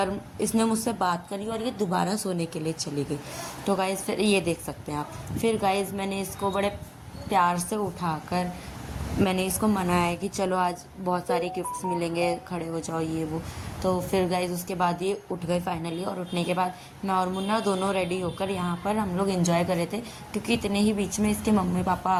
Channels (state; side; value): identical; both; correlation 1.00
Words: इसने मुझसे बात करी और ये दोबारा सोने के लिए चली गई। तो गाइस फिर ये देख सकते हैं आप। फिर गाइस मैंने इसको बड़े प्यार से उठाकर मैंने इसको मनाया कि चलो आज बहुत सारे गिफ्ट्स मिलेंगे, खड़े हो जाओ ये वो। तो फिर गाइज उसके बाद ये उठ गए फाइनली, और उठने के बाद मैं और मुन्ना दोनों रेडी होकर यहाँ पर हम लोग एंजॉय कर रहे थे, क्योंकि इतने ही बीच में इसके मम्मी पापा